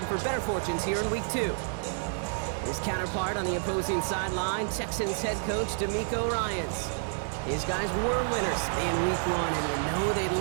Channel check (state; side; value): silent; left; 58 dB below the other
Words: for better fortunes here in week 2. His counterpart on the opposing sideline, Texans head coach D'Amico Ryans. His guys were winners in week 1, and you know they'd